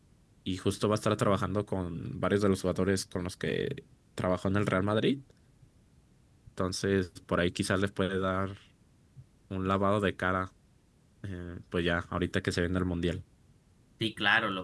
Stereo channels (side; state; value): both; identical; correlation 1.00